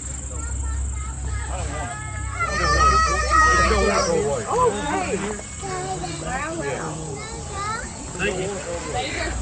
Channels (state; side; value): identical; both; correlation 1.00